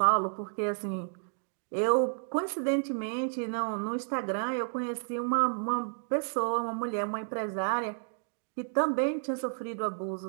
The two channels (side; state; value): left; silent; digital silence